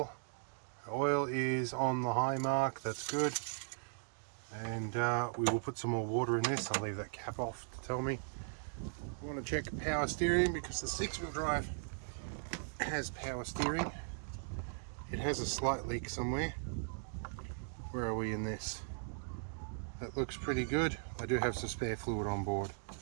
The oil is on the high mark, that's good. And we will put some more water in this. I'll leave that cap off to tell me. We want to check power steering because the 6-wheel drive has power steering. It has a slight leak somewhere. Where are we in this? That looks pretty good. I do have some spare fluid on board.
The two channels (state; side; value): silent; left; digital silence